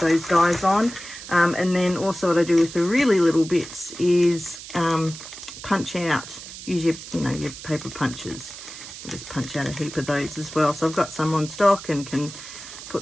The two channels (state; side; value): noise; right; hiss, 13 dB below the sound